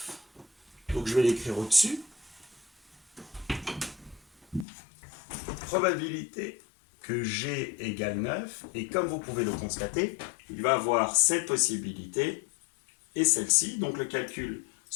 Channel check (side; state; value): right; drops out; at 4.7 s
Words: Donc je vais l'écrire au-dessus. Probabilité que g égale 9. Et comme vous pouvez le constater, il va avoir cette possibilité et celle-ci. Donc le calcul